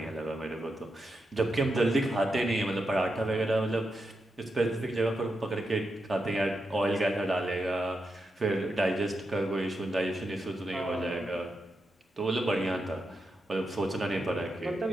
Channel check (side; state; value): both; normal; correlation 0.86